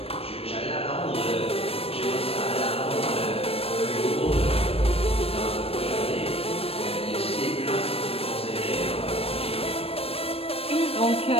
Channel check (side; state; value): right; late; 0.28 ms